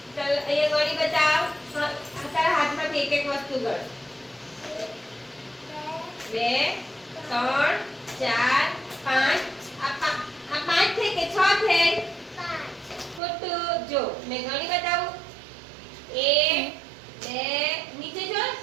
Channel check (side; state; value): left; drops out; at 13.2 s